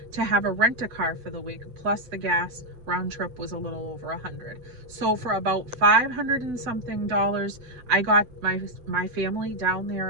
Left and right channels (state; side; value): late; left; 8.0 ms